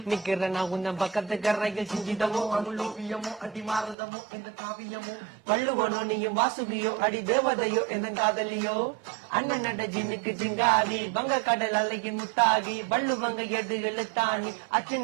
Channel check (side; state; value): left; drops out; at 4.0 s